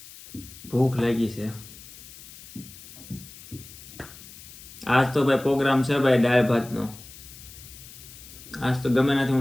ભૂખ લાગી છે. આજ તો ભાઈ પ્રોગ્રામ છે ભાઈ દાળ ભાતનો. આજ તો ગમે નથી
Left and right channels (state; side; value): noise; left; hiss, 17 dB below the sound